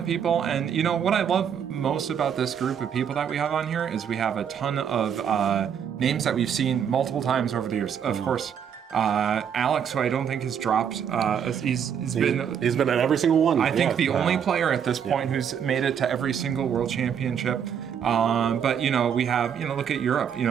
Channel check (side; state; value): left; quieter; 8.1 dB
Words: people, and what I love most about this group of people that we have on here is we have a ton of names that we've seen multiple times over the years. Of course, Alex, who I don't think has dropped, he's been at every single one. I think the only player at this point who's made it to every single world championship. But we have, look at Europe,